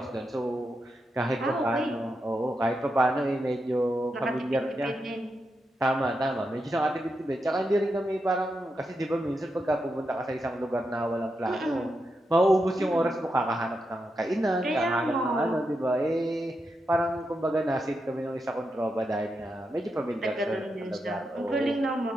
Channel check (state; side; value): normal; both; correlation 0.86